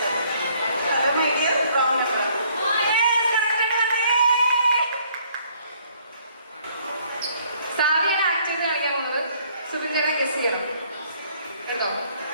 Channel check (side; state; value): both; inverted; correlation -0.63